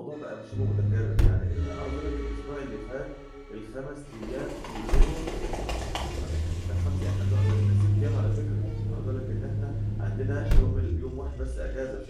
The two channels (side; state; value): both; identical; correlation 1.00